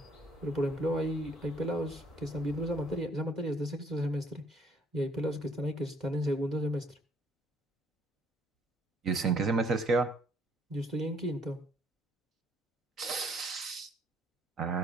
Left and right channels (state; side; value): normal; both; correlation 0.64